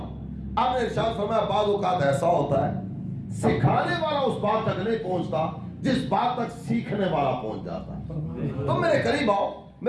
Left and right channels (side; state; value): both; identical; correlation 1.00